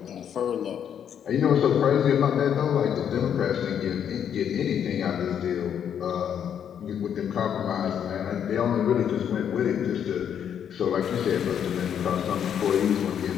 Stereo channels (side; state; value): right; quieter; 8.7 dB